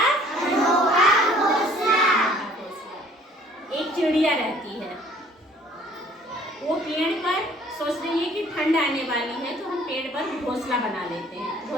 अनोखा घोंसला। एक चिड़िया रहती है, वो पेड़ पर सोच रही है कि ठंड आने वाली है तो हम पेड़ पर घोंसला बना लेते हैं।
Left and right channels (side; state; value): both; normal; correlation 0.55